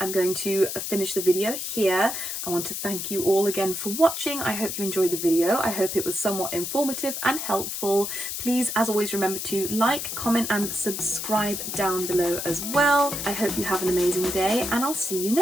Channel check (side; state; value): left; noise; hiss, 4 dB below the sound